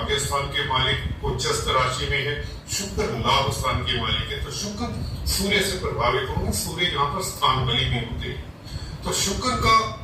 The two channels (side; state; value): both; identical; correlation 1.00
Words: स्थान के मालिक उच्चस्थ राशि में है, शुक्र लाभ स्थान के मालिक है, तो शुक्र सूर्य से प्रभावित होंगे। सूर्य यहाँ पर स्थान बली भी होते हैं, तो शुक्र का